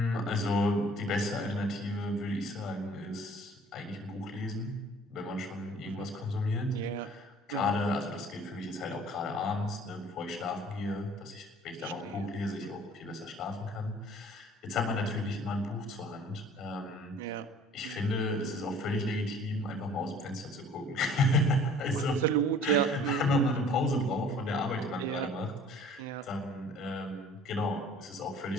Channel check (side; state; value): both; normal; correlation 0.51